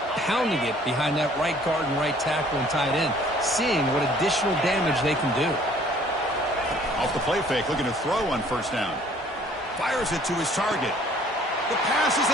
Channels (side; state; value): both; normal; correlation 0.57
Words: pounding it behind that right guard and right tackle and tight end, seeing what additional damage they can do. Off the play fake, looking to throw on 1st down. Fires it to his target. The pass is